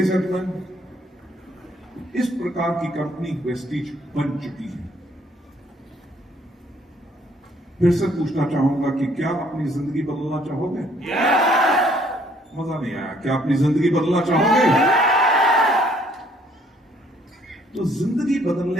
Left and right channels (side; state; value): both; normal; correlation 0.63